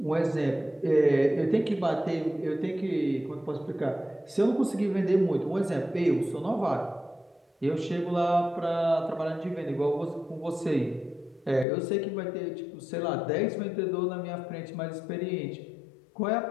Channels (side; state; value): right; drops out; at 11.7 s